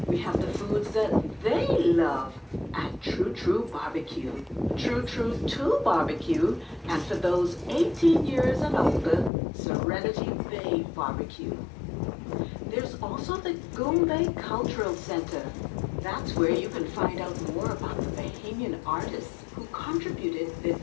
we have the foods that they love at True True Barbecue, True True 2 Barbecue, and for those 18 years and older, Serenity Bay Barbecue. There's also the Goombay Cultural Center. That's where you can find out more about the Bahamian artists who contributed their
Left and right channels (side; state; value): right; drops out; at 9.3 s